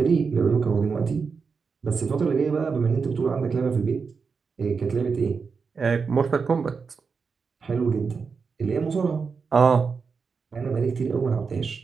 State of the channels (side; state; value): left; quieter; 5.3 dB